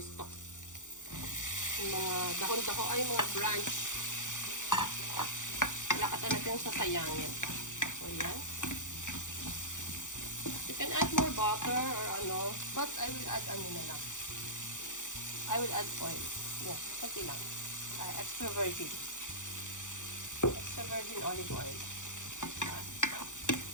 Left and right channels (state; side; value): late; right; 0.86 ms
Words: stock. Yung mga dahon-dahon, ay mga branch. Wala ka talagang sasayangin. So, yan. You can add more butter or but I will add na lang. I will add oil. Yeah, pati lang. Extra virgin olive oil.